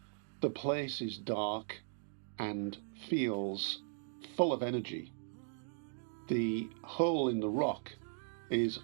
The place is dark and feels full of energy. The hole in the rock is,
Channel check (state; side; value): silent; left; digital silence